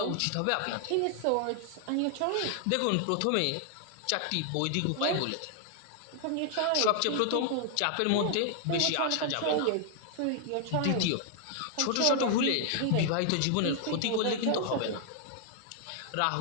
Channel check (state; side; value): different; both; correlation 0.00